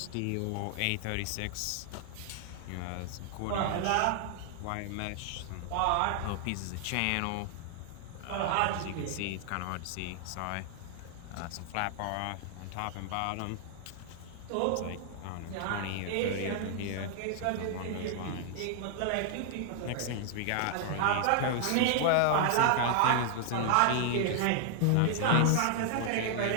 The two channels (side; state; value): both; different; correlation 0.00